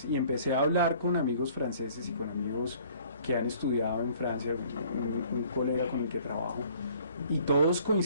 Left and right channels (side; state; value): both; inverted; correlation -0.56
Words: y empecé a hablar con amigos franceses y con amigos que han estudiado en Francia, un colega con el que trabajo, y todos